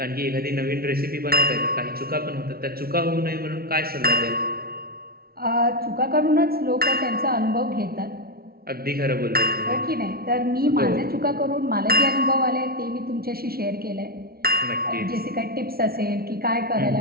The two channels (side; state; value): left; late; 0.44 ms